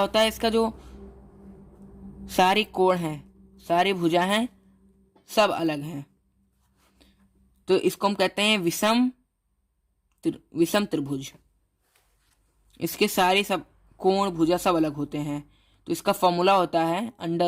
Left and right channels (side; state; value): both; identical; correlation 1.00